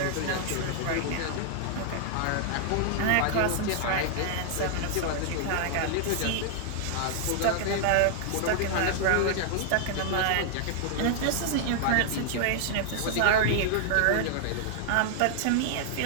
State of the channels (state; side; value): different; both; correlation -0.01